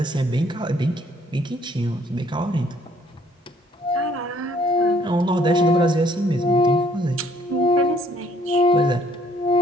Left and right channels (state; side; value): normal; both; correlation 0.62